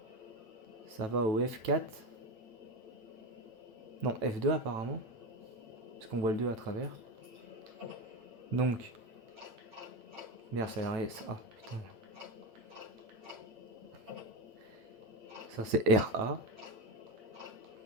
Ça va au F4. Non, F2 apparemment. Parce qu'on voit le 2 à travers. Donc. Merde, ça a l'air. Ah, putain. Ça, c'est RA.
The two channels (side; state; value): left; late; 9.1 ms